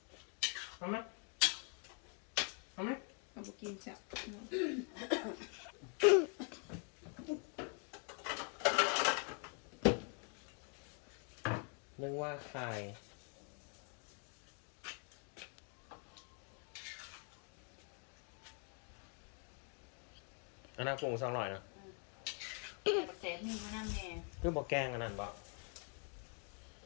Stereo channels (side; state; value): right; quieter; 39.8 dB